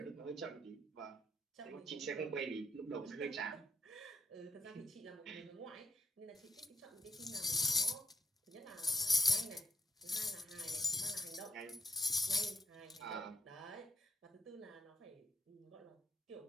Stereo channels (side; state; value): both; normal; correlation 0.71